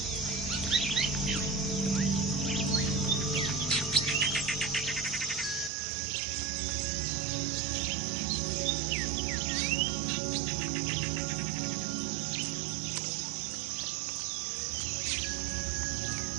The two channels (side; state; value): left; drops out; at 5.7 s